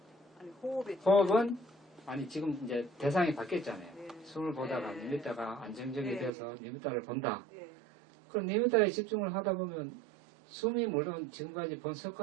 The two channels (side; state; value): left; drops out; at 6.3 s